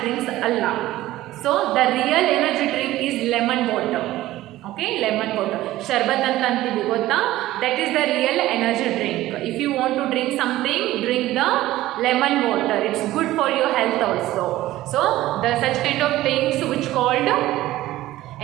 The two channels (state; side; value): quieter; left; 15.8 dB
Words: drinks ಅಲ್ಲ. So the real energy drink is lemon water. Okay, lemon water. Sharbat anta antivi gotta. That is the real energy drink. If you want to drink something, drink the lemon water. It's good for your health also. So the such kind of things which called